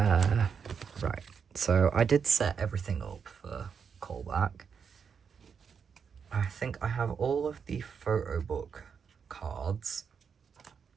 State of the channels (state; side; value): quieter; left; 6.5 dB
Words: so I did set everything up for callback. I think I have all of the photo book cards,